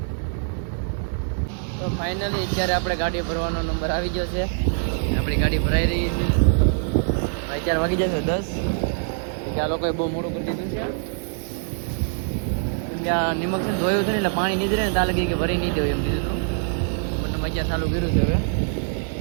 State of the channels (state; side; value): silent; left; digital silence